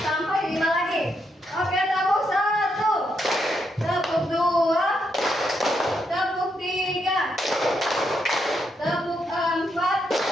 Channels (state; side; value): normal; both; correlation 0.79